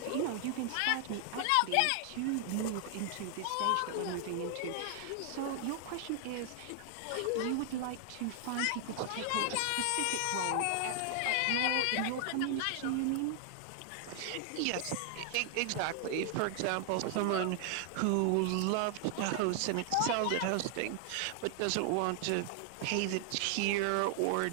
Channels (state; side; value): different; both; correlation 0.00